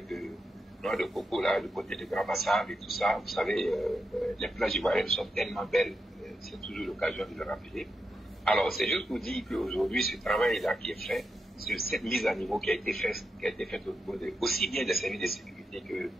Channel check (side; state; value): both; normal; correlation 0.86